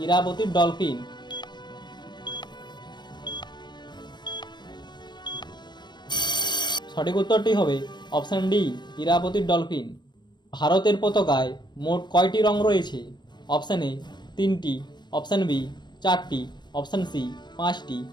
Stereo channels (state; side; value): late; right; 0.21 ms